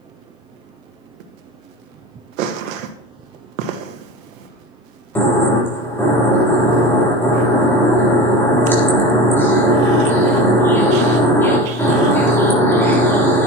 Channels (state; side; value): normal; both; correlation 0.31